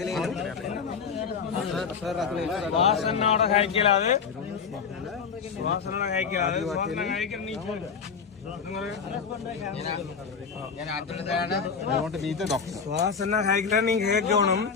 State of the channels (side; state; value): right; quieter; 6.0 dB